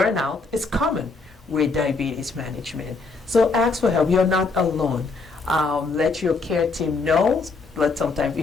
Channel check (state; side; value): quieter; right; 3.9 dB